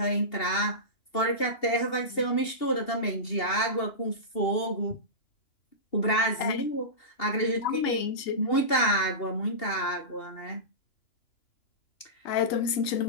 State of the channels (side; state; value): right; late; 2.7 ms